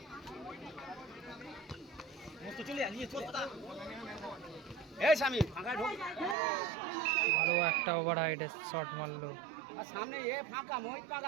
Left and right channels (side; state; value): left; drops out; at 6.4 s